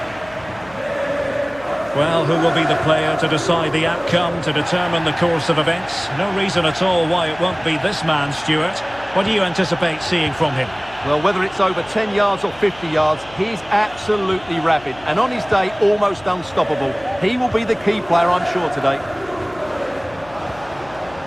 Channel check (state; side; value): noise; left; hum, 22 dB below the sound